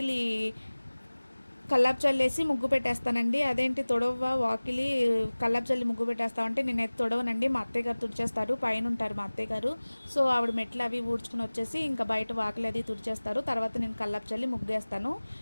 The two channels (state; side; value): inverted; both; correlation -1.00